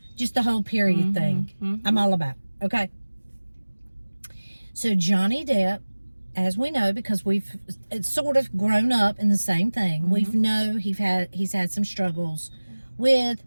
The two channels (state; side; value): inverted; both; correlation -1.00